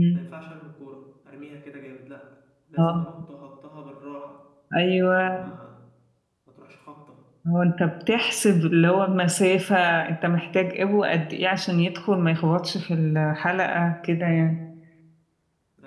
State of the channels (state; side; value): identical; both; correlation 1.00